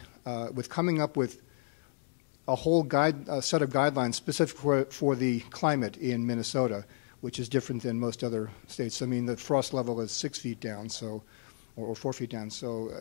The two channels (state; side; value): silent; right; digital silence